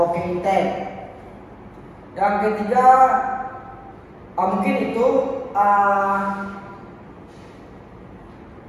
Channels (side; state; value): both; identical; correlation 1.00